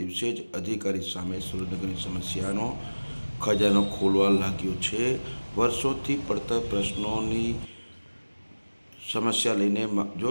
જ અધિકારી સામે સુરેન્દ્રનગરની સમસ્યાનો ખજાનો ખોલવા લાગ્યો છે। વર્ષોથી પડતર પ્રશ્નોની સમસ્યા લઈને જો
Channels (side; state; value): both; inverted; correlation -1.00